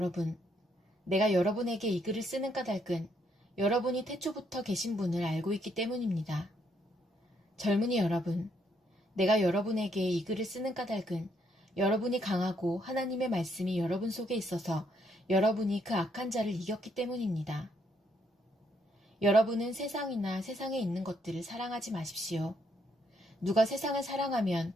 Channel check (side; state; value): both; normal; correlation 0.73